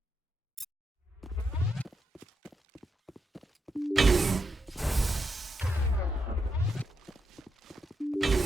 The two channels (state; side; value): normal; both; correlation 0.83